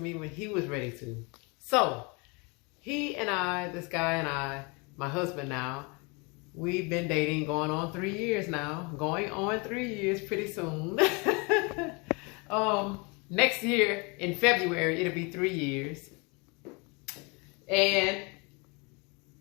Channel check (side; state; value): right; quieter; 30.2 dB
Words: when he was ready to. So, he and I, this guy and I, my husband now, we've been dating going on 3 years now. Going on 3 years pretty soon. Next year, in February, it'll be 3 years. And